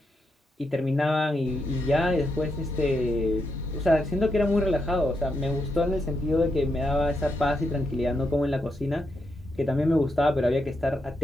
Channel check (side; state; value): both; normal; correlation 0.82